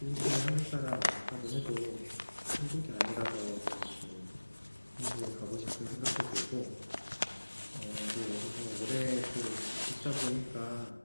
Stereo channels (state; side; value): inverted; both; correlation -1.00